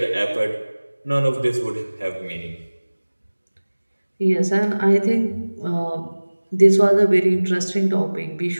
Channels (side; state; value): both; inverted; correlation -1.00